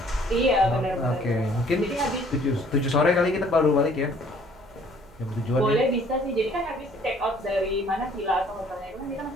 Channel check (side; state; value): right; noise; hum, 25 dB below the sound